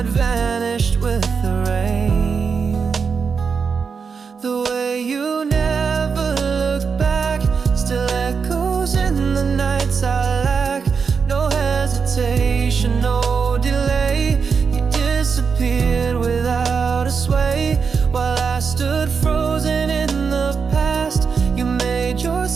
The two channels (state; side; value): quieter; left; 5.7 dB